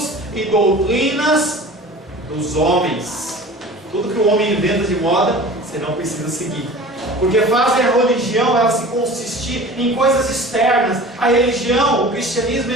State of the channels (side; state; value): both; normal; correlation 0.40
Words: e doutrinas dos homens. Tudo que o homem inventa de moda, você não precisa seguir. Porque fazem a religião ela se consistir em coisas externas. A religião, o cristianismo,